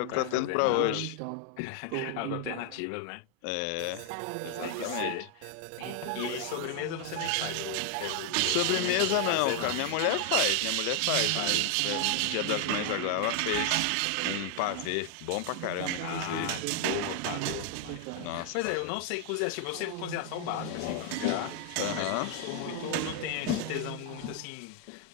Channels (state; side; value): different; both; correlation 0.00